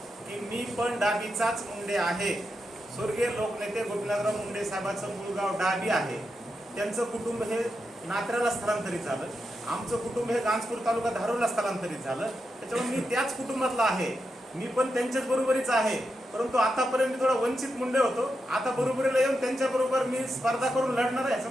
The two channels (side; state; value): both; normal; correlation 0.86